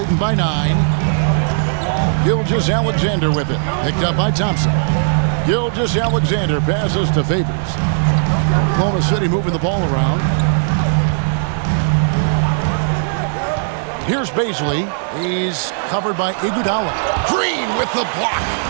by 9. Gilgeous-Alexander with it. Picked up by Thompson. Gilgeous-Alexander passes to Favors. Oklahoma City moving the ball around. Here's Baisley. He's covered by Iguodala. Green with the block.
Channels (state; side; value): silent; left; digital silence